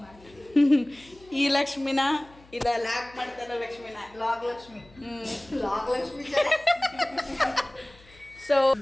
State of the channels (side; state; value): left; noise; hum, 26 dB below the sound